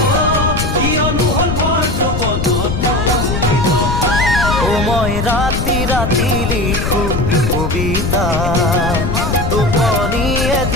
কিয়নো হল ভৰ যৌৱনত মোৰ এই দশা। ও মই ৰাতি ৰাতি লিখো কবিতা, টোপনিয়ে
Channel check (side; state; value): left; noise; rumble, 2 dB below the sound